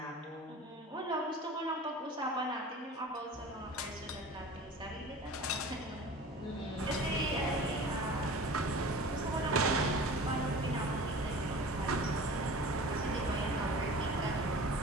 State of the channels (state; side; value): normal; both; correlation 0.39